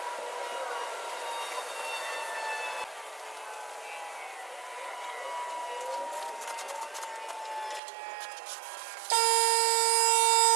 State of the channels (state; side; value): drops out; left; at 7.8 s